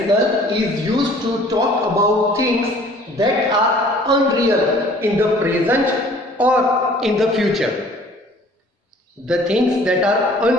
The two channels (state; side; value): normal; both; correlation 0.53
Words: is used to talk about things that are unreal in the present or in the future. The things that are